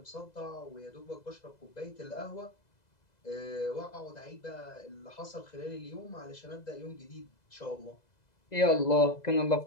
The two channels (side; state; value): right; late; 2.0 ms